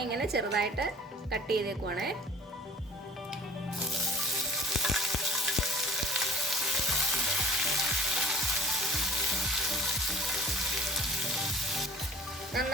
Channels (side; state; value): both; normal; correlation 0.49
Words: ഇങ്ങനെ ചെറുതായിട്ട് കട്ട് ചെയ്തേക്കുവാണേ.